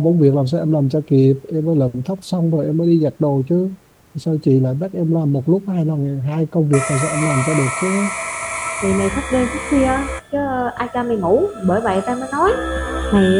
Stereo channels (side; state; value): both; identical; correlation 1.00